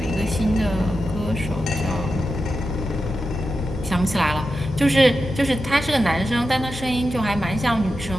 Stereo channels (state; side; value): normal; both; correlation 0.90